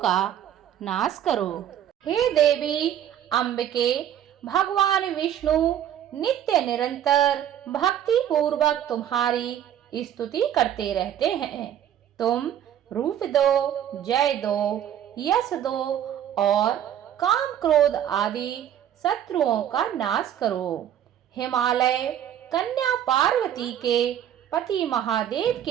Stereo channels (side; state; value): left; quieter; 10.5 dB